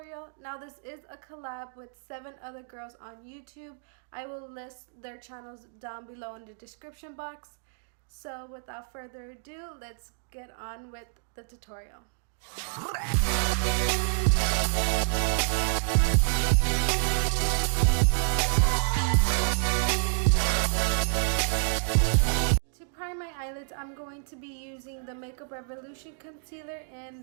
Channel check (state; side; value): silent; left; digital silence